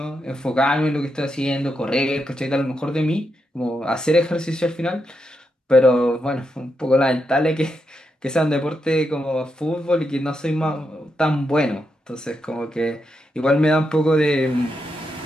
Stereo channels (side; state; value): both; normal; correlation 0.84